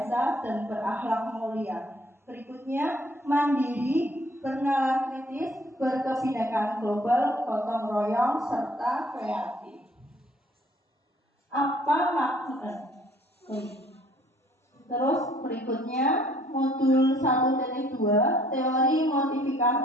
dan berakhlak mulia. Berikutnya, mandiri, bernalar kritis, berkebinekaan global, gotong royong, serta kreatif. Apa makna? Terus berikutnya, modul 1.2, teori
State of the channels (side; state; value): both; normal; correlation 0.60